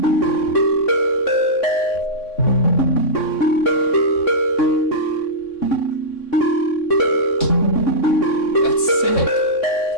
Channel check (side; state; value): right; late; 3.6 ms